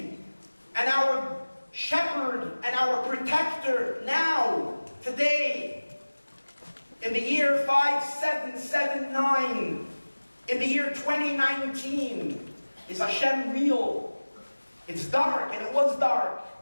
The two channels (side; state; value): both; inverted; correlation -1.00